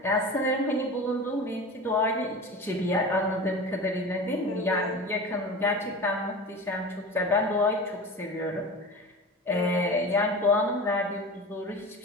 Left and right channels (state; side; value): normal; both; correlation 0.32